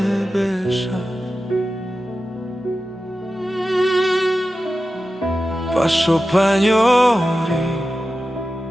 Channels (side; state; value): both; normal; correlation 0.93